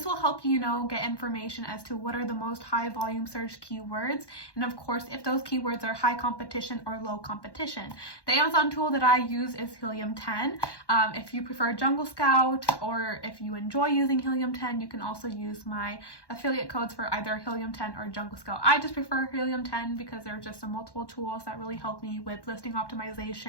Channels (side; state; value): right; late; 1.1 ms